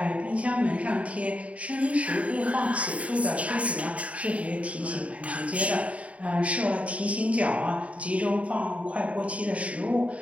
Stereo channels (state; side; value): late; left; 0.066 ms